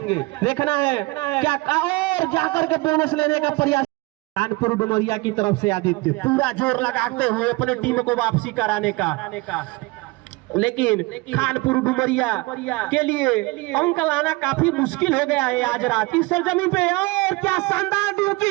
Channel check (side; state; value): left; quieter; 23.9 dB